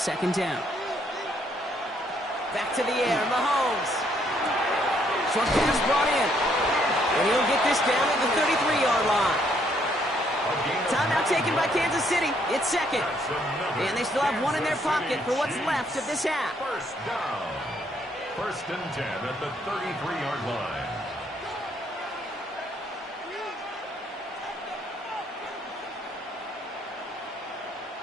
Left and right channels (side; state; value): both; normal; correlation 0.69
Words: down. Back to the air. Mahomes. Short pass brought in. And he'll get this down at the 33-yard line. Timeout taken by Kansas City. It's 2nd. And they still have 1 in their pocket for what's left of this half. 1st down. 1st and 10 at the 33-yard line.